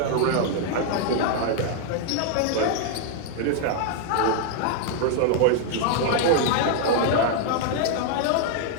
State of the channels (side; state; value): both; different; correlation 0.00